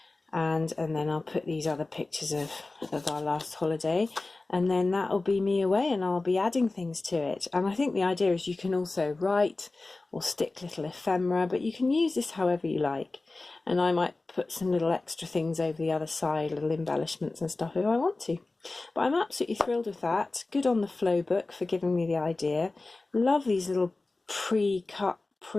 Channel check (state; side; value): quieter; right; 3.3 dB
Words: And then I'll put these other pictures of our last holiday, and then that'll be me away, and I'll be adding things to it. And I think the idea is you can also write or stick little ephemera, but you can use this however you like. And I might put some little extra things over the other side, little embellishments and stuff if I want to. But I'm absolutely thrilled with that. Good on the Flow book for giving me the idea. Love these little pre-cut,